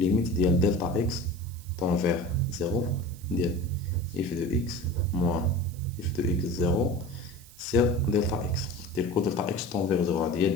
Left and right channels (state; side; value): noise; right; hiss, 22 dB below the sound